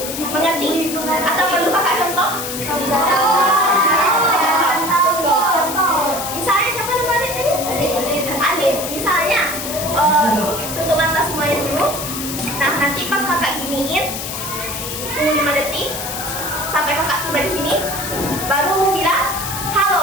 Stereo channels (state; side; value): noise; left; hiss, 6 dB below the sound